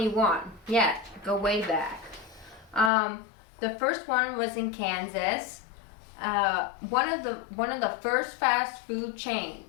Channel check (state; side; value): drops out; right; at 2.9 s